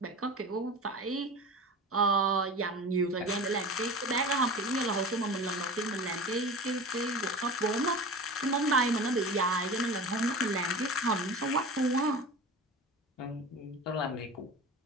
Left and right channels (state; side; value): normal; both; correlation 0.33